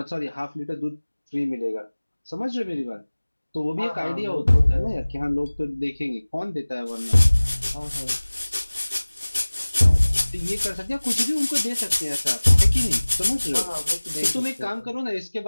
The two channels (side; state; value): both; inverted; correlation -1.00